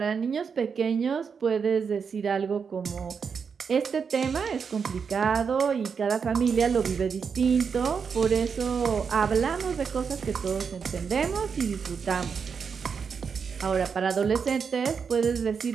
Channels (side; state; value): left; quieter; 6.1 dB